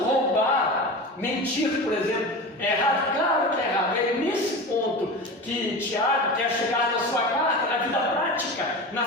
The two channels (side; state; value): both; normal; correlation 0.29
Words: roubar, mentir, por exemplo, é errado? Claro que é errado. É nesse ponto que Tiago quer chegar na sua carta, na vida prática,